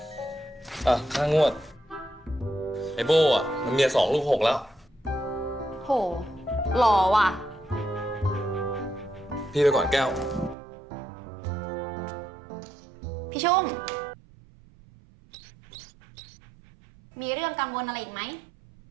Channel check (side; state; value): left; drops out; at 10.6 s